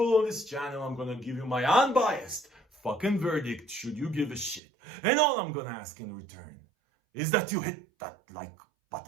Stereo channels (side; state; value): left; drops out; at 4.6 s